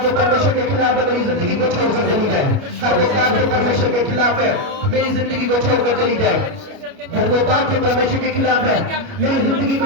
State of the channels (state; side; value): late; left; 29 ms